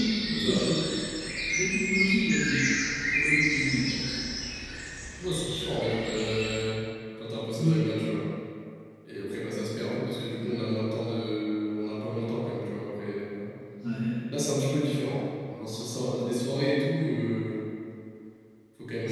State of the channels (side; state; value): both; identical; correlation 1.00